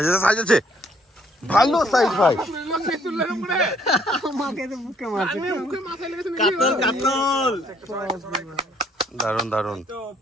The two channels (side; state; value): both; normal; correlation 0.65